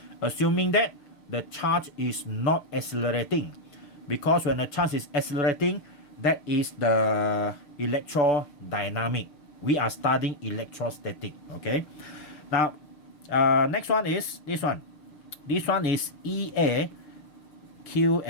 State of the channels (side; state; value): right; late; 6.6 ms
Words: Assuming that the charge is not accelerating, because when the charge is accelerating, that is the electrodynamic. We are studying electrostatic. Okay, now next one is this one. This one is EA Q